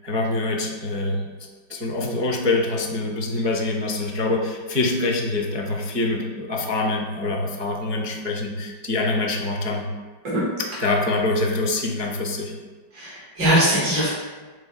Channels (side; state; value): left; late; 5.2 ms